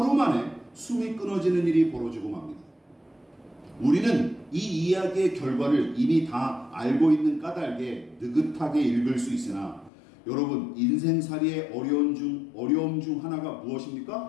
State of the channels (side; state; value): right; drops out; at 9.9 s